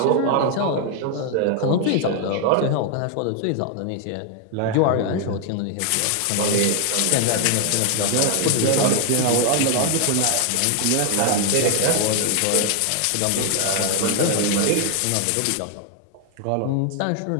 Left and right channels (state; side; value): different; both; correlation 0.00